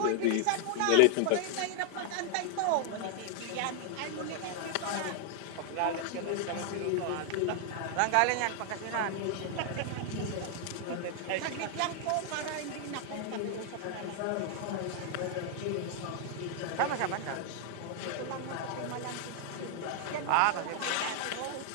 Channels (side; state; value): both; different; correlation 0.00